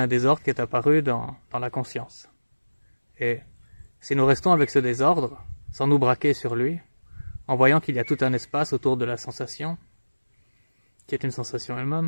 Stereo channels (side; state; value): both; inverted; correlation -1.00